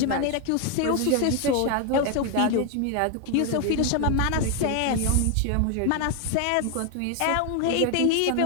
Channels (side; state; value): both; different; correlation 0.01